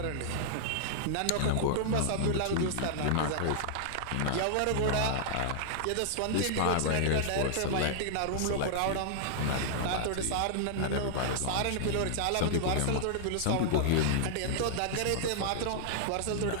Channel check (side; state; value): both; different; correlation -0.01